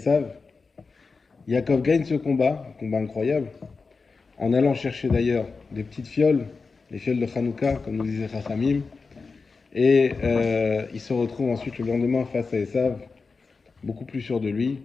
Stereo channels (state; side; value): quieter; right; 4.5 dB